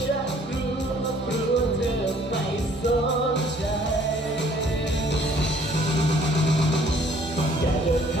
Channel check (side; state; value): both; normal; correlation 0.59